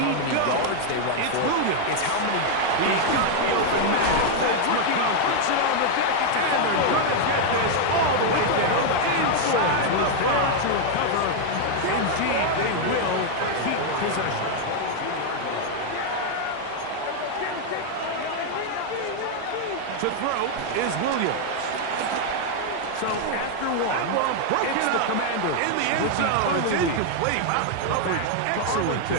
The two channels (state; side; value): different; both; correlation 0.00